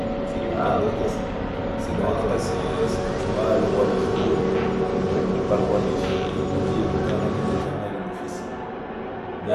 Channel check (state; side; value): identical; both; correlation 1.00